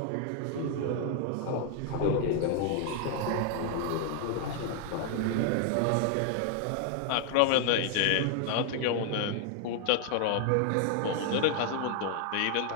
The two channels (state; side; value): different; both; correlation 0.00